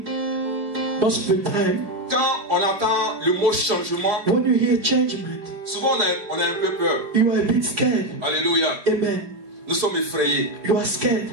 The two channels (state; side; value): late; left; 4.9 ms